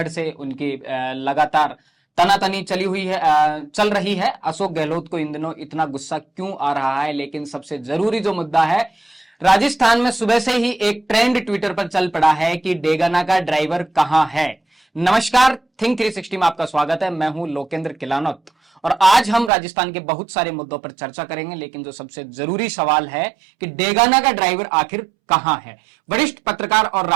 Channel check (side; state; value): left; drops out; at 19.5 s